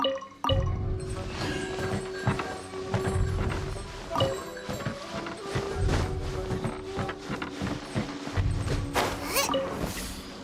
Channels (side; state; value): both; identical; correlation 1.00